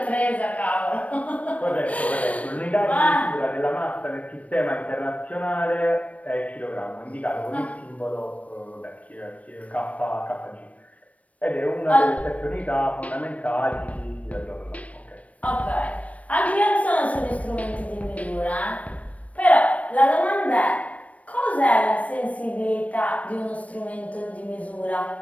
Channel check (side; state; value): right; late; 0.066 ms